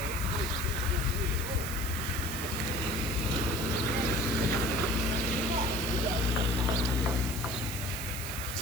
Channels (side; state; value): right; noise; hiss, 8 dB below the sound